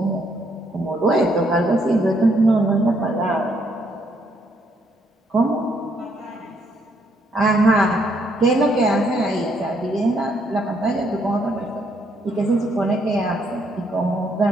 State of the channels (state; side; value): normal; both; correlation 0.72